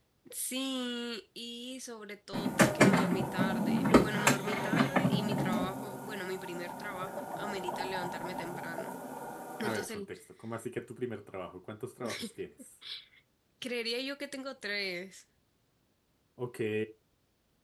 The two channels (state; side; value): identical; both; correlation 1.00